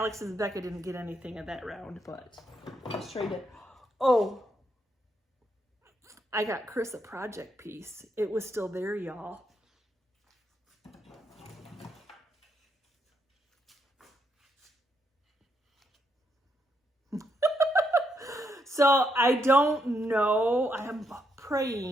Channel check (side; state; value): both; normal; correlation 0.78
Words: and Becca didn't get anything at that round, but let's trade it. Oh, I got Chris a project piece. It was still there, y'all. So I don't know. I am